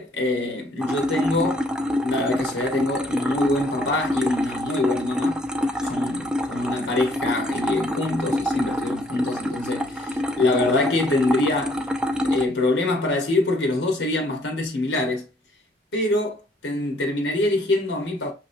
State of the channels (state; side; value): normal; both; correlation 0.64